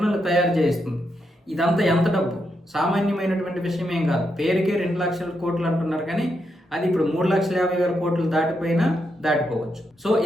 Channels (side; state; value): both; normal; correlation 0.82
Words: తయారు చేస్తుంది. ఇదంతా ఎంత డబ్బు? సామాన్యమైనటువంటి విషయం ఏం కాదు. పేరుకే 2 లక్షల కోట్లు అంటున్నారు, కానీ అది ఇప్పుడు 3,50,000 కోట్లు దాటిపోయినా దాటిపోవచ్చు. సో